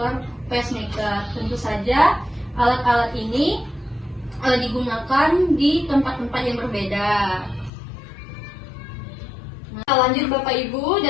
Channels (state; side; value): drops out; right; at 7.7 s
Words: pacemaker. Tentu saja alat-alat ini digunakan di tempat-tempat yang berbeda. Nah, lanjut Bapak Ibu,